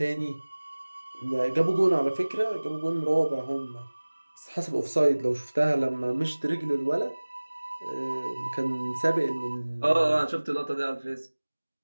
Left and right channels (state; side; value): inverted; both; correlation -1.00